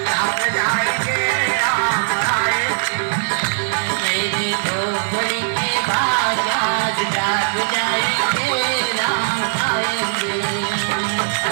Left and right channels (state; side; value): silent; left; digital silence